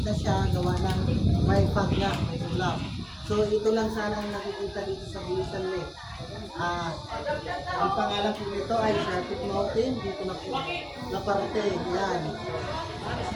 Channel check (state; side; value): identical; both; correlation 1.00